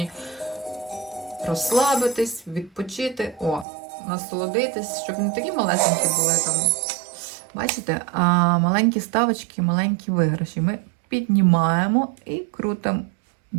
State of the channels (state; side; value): drops out; left; at 3.7 s